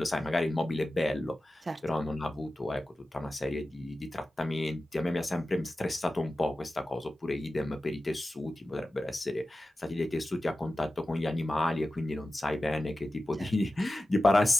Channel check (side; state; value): both; normal; correlation 0.94